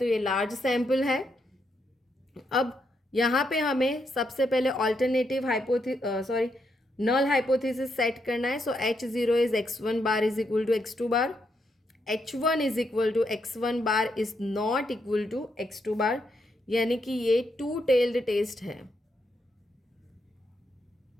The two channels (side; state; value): both; normal; correlation 0.79